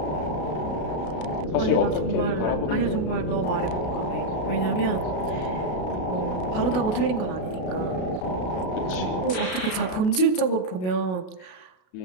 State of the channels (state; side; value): late; right; 33 ms